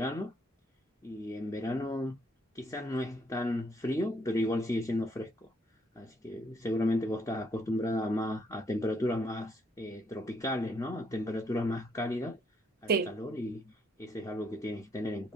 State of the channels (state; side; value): normal; both; correlation 0.71